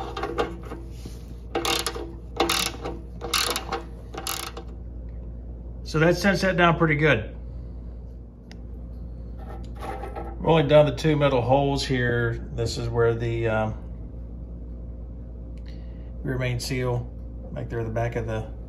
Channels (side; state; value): both; identical; correlation 1.00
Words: So that sets that down pretty good. Rolling down the two metal holes here, this is where the rear main seal, right there at the back of the